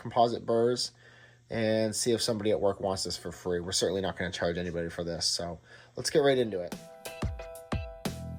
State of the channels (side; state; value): both; identical; correlation 1.00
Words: burrs, and see if somebody at work wants this for free. We're certainly not going to charge anybody for this, so let's get right into it.